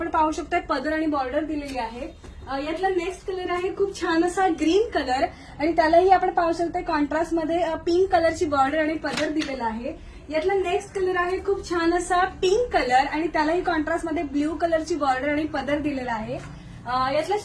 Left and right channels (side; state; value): both; identical; correlation 1.00